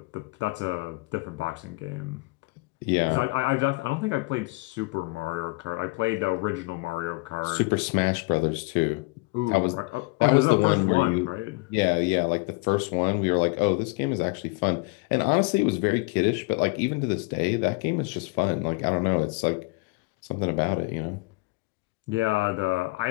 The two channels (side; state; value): right; quieter; 27.0 dB